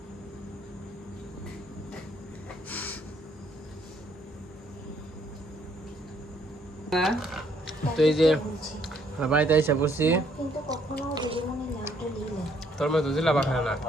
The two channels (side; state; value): both; normal; correlation 0.67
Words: তো এই যে বাড়িতে এসে বসছি তোর মতো জিলাপা খায় না